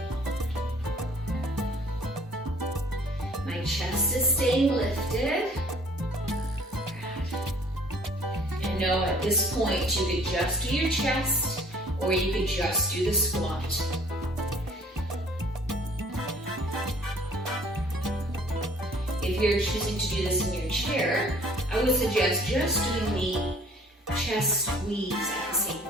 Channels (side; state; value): both; normal; correlation 0.54